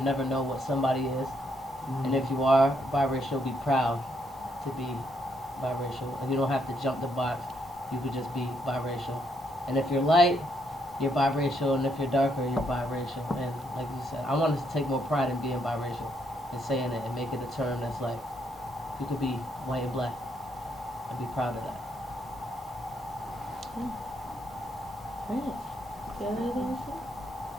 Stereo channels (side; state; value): both; normal; correlation 0.75